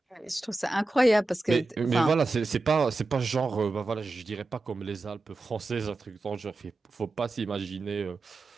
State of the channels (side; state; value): left; quieter; 3.1 dB